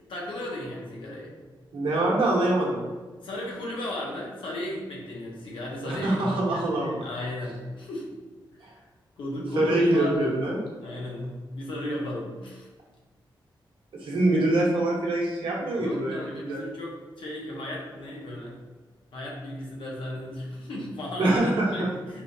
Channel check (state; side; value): normal; both; correlation 0.76